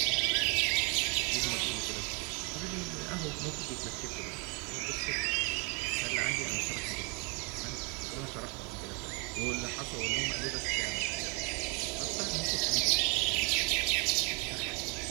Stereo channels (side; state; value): left; quieter; 32.3 dB